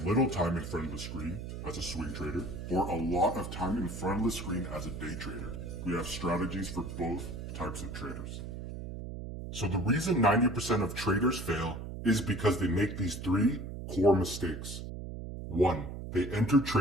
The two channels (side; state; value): right; noise; hum, 8 dB below the sound